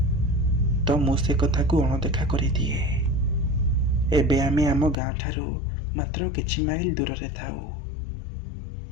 तो मु से कथा को अणदेखा करि दिए। एबे आमे आम गाँ ठारू मात्र किछि माइल दूर रे थाउ,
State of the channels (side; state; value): right; drops out; at 5.0 s